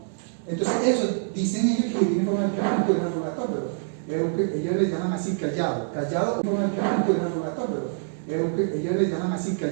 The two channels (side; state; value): left; silent; digital silence